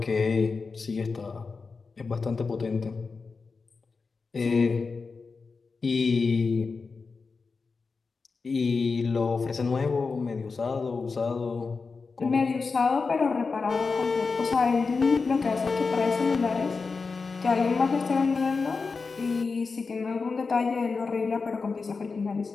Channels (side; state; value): right; quieter; 4.5 dB